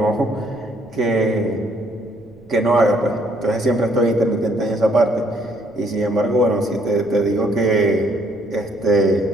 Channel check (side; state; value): right; noise; rumble, 28 dB below the sound